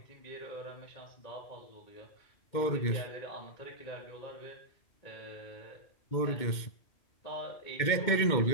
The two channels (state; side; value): late; right; 2.2 ms